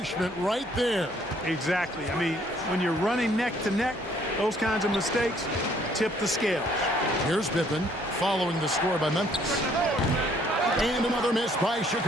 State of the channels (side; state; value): both; normal; correlation 0.63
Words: right there. Exactly. I mean, when you're running neck to neck, those kinds of mistakes tip the scales. Here's Pippen following the score by Memphis. And another miss by